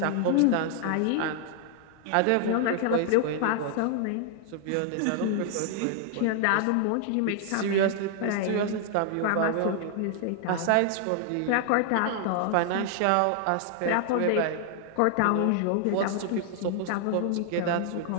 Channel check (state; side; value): different; both; correlation 0.00